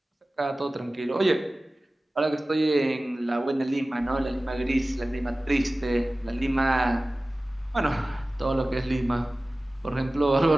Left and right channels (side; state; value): both; normal; correlation 0.97